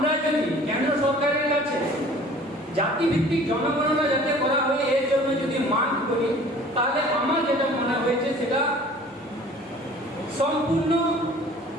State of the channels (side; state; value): left; noise; hum, 30 dB below the sound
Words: যদি কেন্দ্র সরকারের কাছে জাতিভিত্তিক জনগণনা যাতে করা হয় এর জন্য যদি মান করি তাহলে আমার যেটা মনে হয়েছে সেটা সম্পূর্ণ